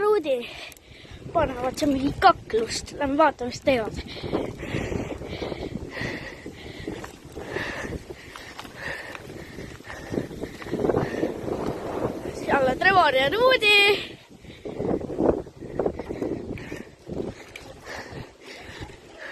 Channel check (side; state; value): both; identical; correlation 1.00